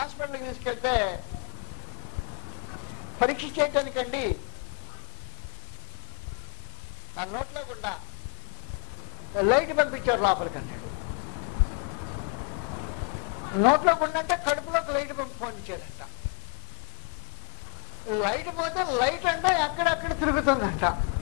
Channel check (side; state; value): right; quieter; 39.1 dB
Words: తీసుకెళ్తే పరీక్ష చేయటానికండి ఆ నోట్లో గుండా లైట్ పంపించారు లోపలికి అన్నాడు. నోట్లో గుండా అంటే కడుపులోకి లైట్ పంపించారంట. లైట్ పోతే లైట్ అంటే అక్కడక్కడ తిరుగుతుందంట.